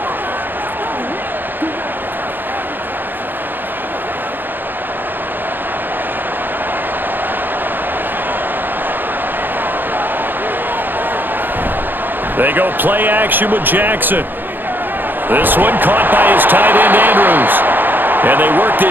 They go play action with Jackson. This one caught by his tight end, Andrews. And they work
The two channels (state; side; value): late; left; 0.092 ms